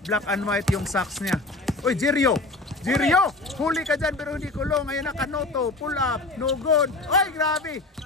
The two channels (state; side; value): quieter; right; 3.1 dB